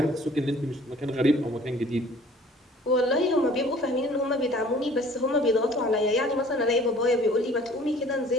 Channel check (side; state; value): both; normal; correlation 0.52